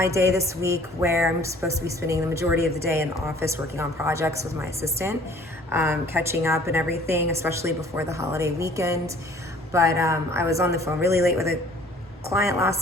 day this week where I'm supposed to be spending the majority of the day in the office working on projects with my assistant, catching up and everything, especially before the holiday weekend. But I was on the phone really late with a client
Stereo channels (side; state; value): both; normal; correlation 0.53